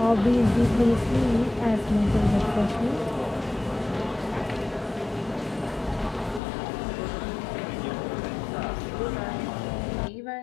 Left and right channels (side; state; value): right; drops out; at 6.4 s